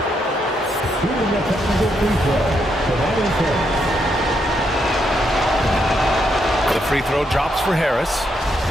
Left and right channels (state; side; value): normal; both; correlation 0.78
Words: The free throw drops for Harris.